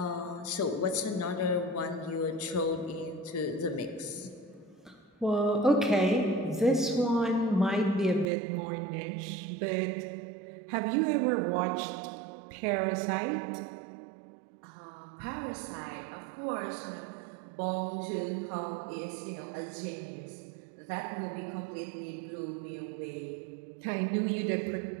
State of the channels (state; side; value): drops out; left; at 8.3 s